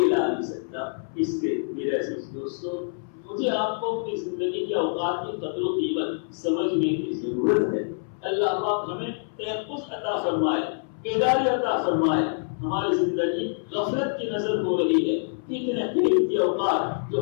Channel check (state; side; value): silent; right; 61 dB below the other